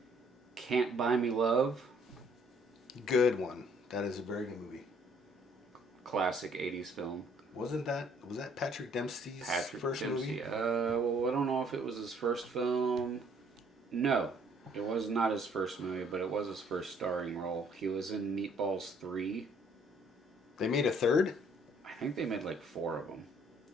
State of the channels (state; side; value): normal; both; correlation 0.62